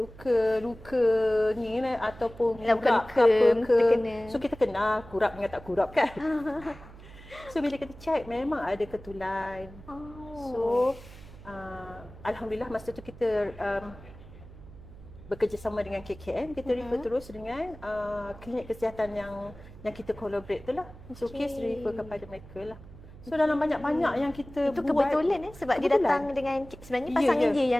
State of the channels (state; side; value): noise; right; hum, 18 dB below the sound